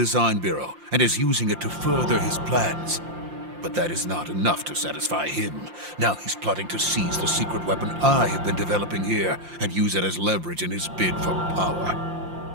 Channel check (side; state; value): left; late; 5.7 ms